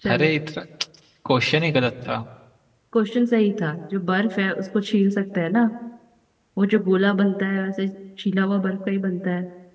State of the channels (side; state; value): both; identical; correlation 1.00